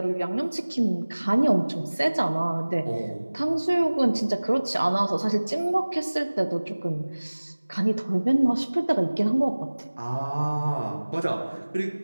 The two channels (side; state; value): both; inverted; correlation -1.00